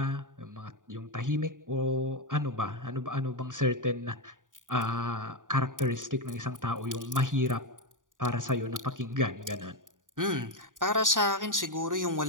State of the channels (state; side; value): late; left; 0.88 ms